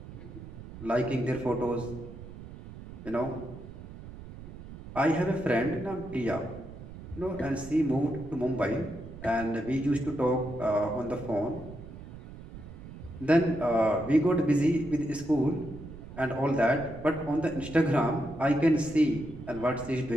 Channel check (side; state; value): right; noise; rumble, 14 dB below the sound